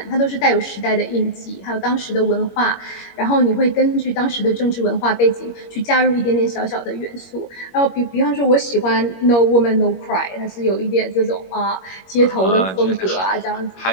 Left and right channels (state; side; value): late; right; 21 ms